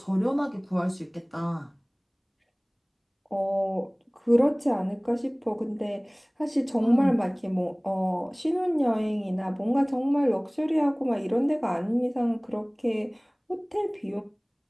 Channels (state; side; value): identical; both; correlation 1.00